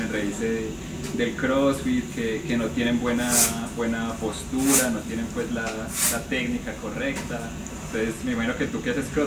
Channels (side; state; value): both; identical; correlation 1.00